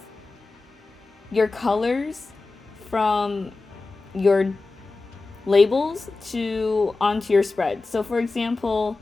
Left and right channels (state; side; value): quieter; right; 3.6 dB